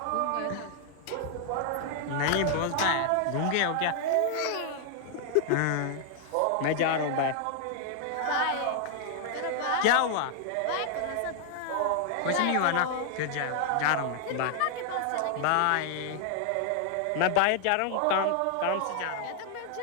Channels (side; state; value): both; different; correlation 0.00